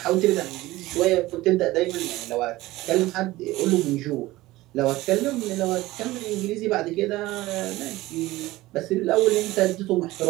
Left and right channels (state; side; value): quieter; left; 18.2 dB